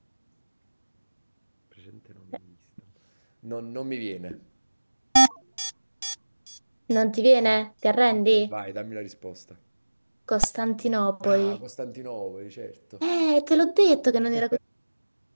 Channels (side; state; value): both; inverted; correlation -1.00